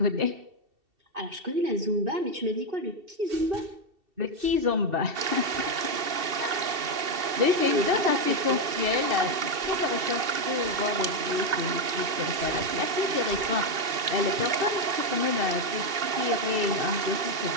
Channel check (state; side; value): late; left; 2.7 ms